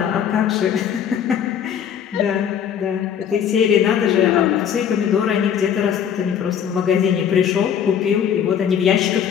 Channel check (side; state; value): right; quieter; 8.6 dB